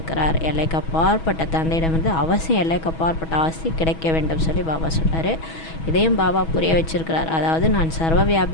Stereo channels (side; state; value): right; late; 6.2 ms